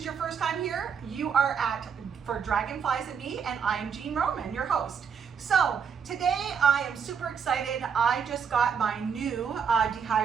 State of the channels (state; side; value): quieter; left; 6.8 dB